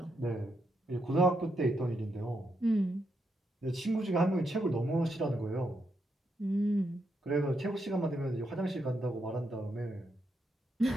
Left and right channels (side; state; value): both; normal; correlation 0.81